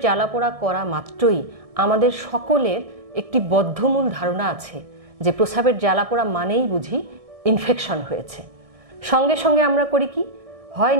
জ্বালাপোড়া করা মাত্রই আমাদের সকলের একটি বদ্ধমূল ধারণা আছে যে প্রস্রাবের জ্বালাপোড়া মানেই বুঝি ইনফেকশন হয়েছে। সঙ্গে সঙ্গে আমরা করি কি, হয়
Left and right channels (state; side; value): late; left; 1.6 ms